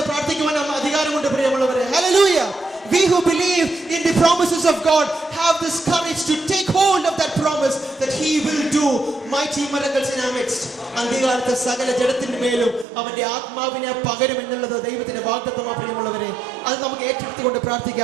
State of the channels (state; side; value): drops out; left; at 12.9 s